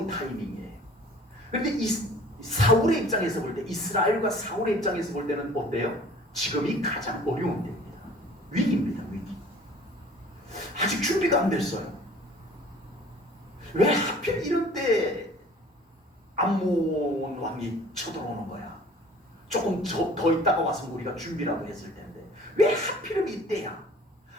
타이밍이에요. 그런데 사울의 입장에서 볼 때, 이스라엘과 사울의 입장에서 볼 때는 어때요? 지금이 가장 어려운 때입니다. 위기입니다. 위기. 아직 준비가 안 됐어요. 왜 하필 이럴 때 암몬 왕이 쳐들어오는 거야? 조금 더 있다가 와서 우리가 준비라도 했을 텐데 왜 하필이면 이때야?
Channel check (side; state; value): both; normal; correlation 0.49